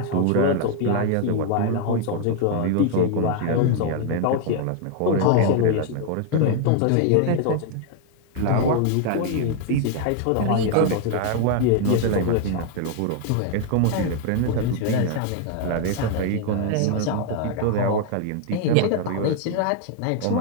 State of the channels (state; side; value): different; both; correlation 0.00